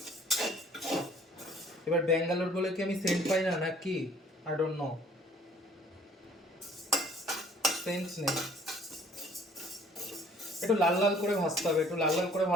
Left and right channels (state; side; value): normal; both; correlation 0.57